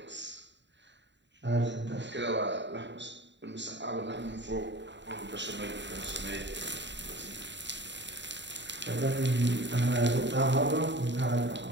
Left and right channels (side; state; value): left; late; 0.52 ms